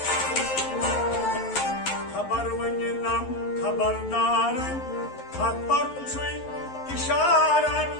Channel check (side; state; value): right; late; 11 ms